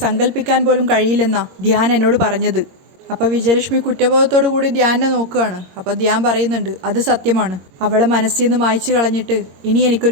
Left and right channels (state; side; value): late; left; 22 ms